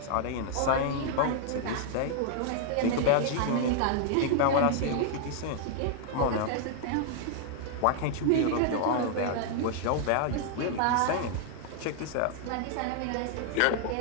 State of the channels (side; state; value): both; different; correlation 0.00